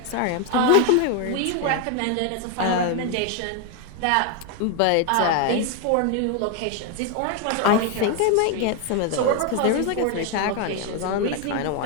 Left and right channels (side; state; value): both; different; correlation 0.01